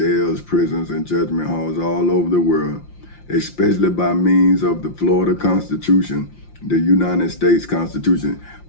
prisons, and judgment halls all over the world, especially by means of the Florida Constitution, the United States Constitution,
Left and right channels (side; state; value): right; late; 5.7 ms